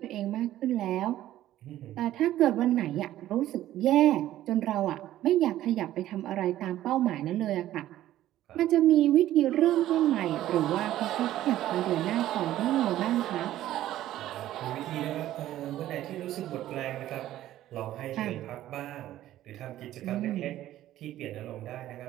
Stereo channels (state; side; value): quieter; left; 13.6 dB